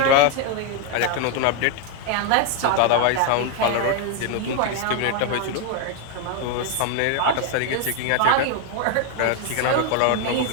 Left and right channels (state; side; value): different; both; correlation 0.01